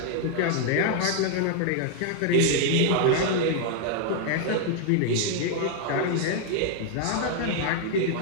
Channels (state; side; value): different; both; correlation 0.00